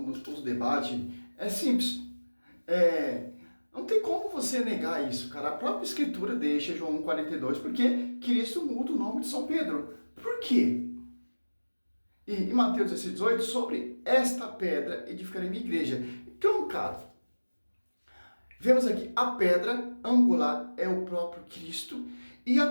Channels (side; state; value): both; inverted; correlation -1.00